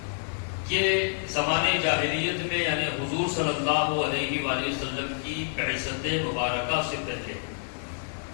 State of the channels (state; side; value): silent; right; digital silence